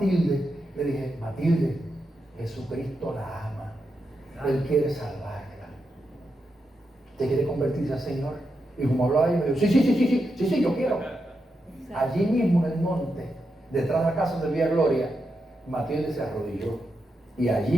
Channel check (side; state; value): both; normal; correlation 0.86